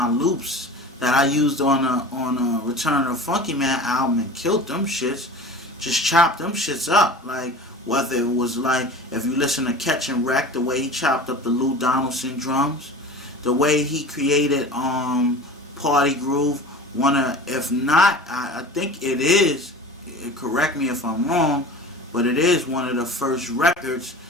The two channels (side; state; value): both; normal; correlation 0.37